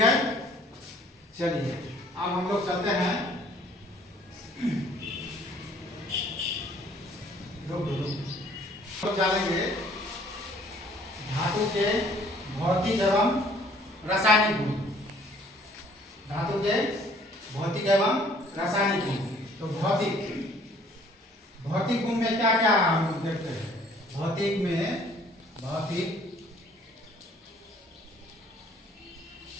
है। चलिए अब हम लोग चलते हैं। जानेंगे धातु के भौतिक एवं रासायनिक गुण। धातु के भौतिक एवं रासायनिक गुण। तो भौतिक गुण में क्या क्या हम लोग देखते हैं?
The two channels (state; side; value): normal; both; correlation 0.58